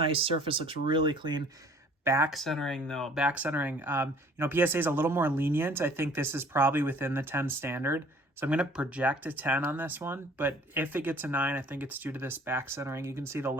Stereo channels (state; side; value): normal; both; correlation 0.54